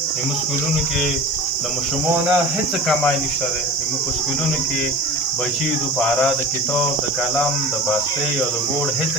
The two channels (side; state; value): right; noise; hiss, 25 dB below the sound